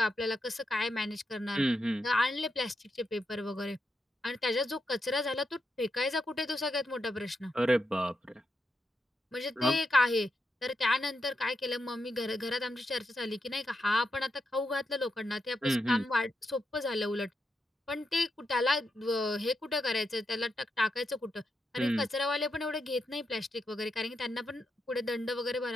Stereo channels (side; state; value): both; normal; correlation 0.85